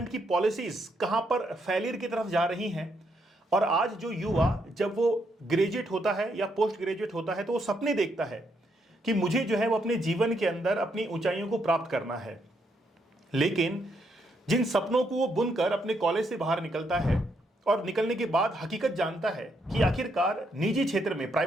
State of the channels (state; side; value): normal; both; correlation 0.76